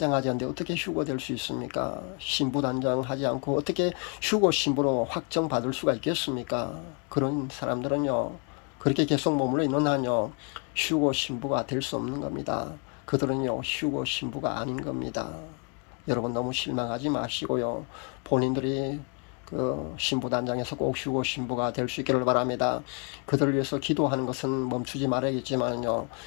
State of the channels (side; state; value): right; quieter; 37.7 dB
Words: 않는데 어떻게 휴거 될 수 있습니까? 신부단장하지 않고 어떻게 휴거 신부로 확정받을 수가 있겠습니까? 그런 사람들은요, 그렇게 계속 머물러 있는 한요, 휴거 신부가 될 수 없는 겁니다. 그들은요, 휴거 신부가 아닌 겁니다. 여러분 너무 실망하지 마시고요, 본인들이 그 신부단장에서 꼭 휴거 신부가 될 수 있기를 바랍니다. 그들을 위해서 기도하는 것은 멈추지 말아야겠지만요,